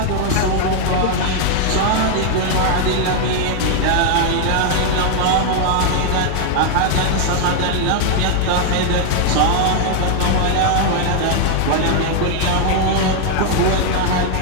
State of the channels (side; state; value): both; different; correlation 0.00